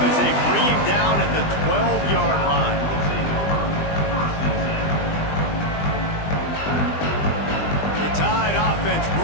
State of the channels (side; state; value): right; late; 20 ms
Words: as they bring him down at the 12-yard line. The Tide offense